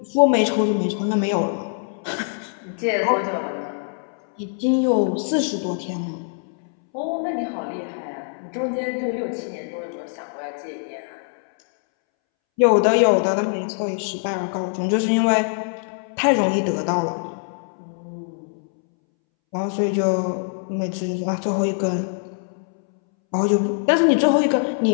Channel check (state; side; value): silent; right; 63 dB below the other